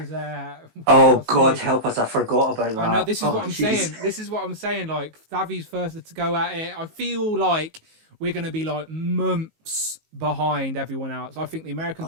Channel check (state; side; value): late; left; 19 ms